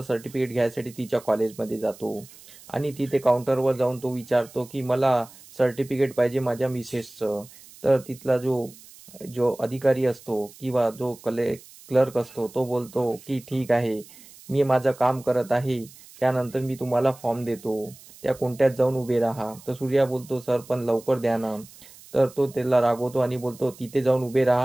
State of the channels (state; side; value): noise; right; hiss, 21 dB below the sound